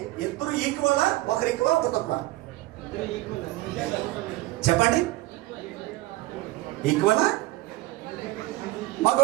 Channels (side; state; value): left; quieter; 18.7 dB